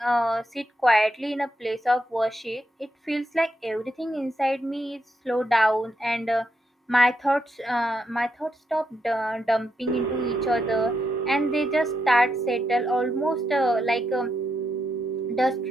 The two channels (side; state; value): both; normal; correlation 0.81